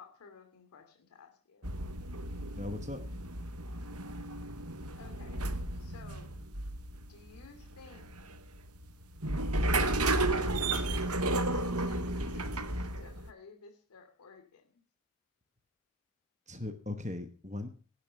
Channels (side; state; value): both; normal; correlation 0.32